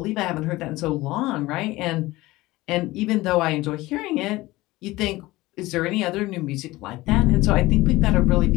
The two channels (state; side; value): quieter; right; 19.1 dB